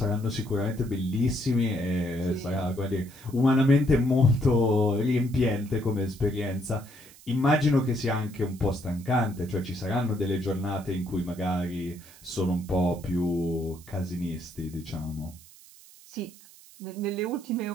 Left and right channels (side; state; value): right; noise; hiss, 22 dB below the sound